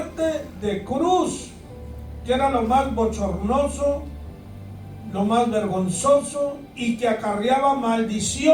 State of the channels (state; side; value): identical; both; correlation 1.00